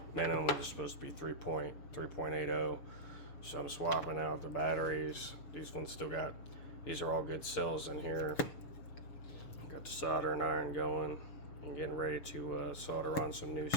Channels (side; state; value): right; late; 6.8 ms